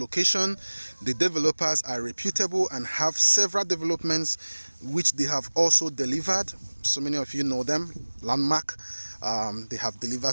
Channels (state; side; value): inverted; both; correlation -1.00